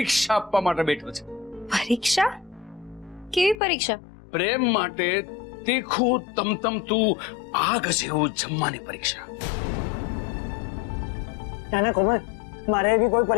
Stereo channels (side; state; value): right; drops out; at 3.6 s